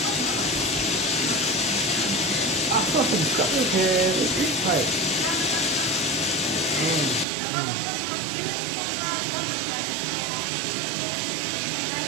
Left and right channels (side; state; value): left; drops out; at 7.2 s